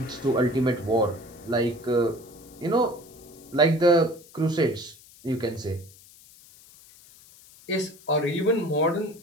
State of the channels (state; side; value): noise; left; hiss, 23 dB below the sound